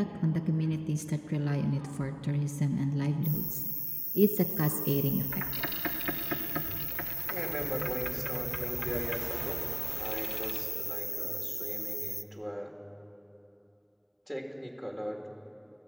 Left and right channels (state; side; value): identical; both; correlation 1.00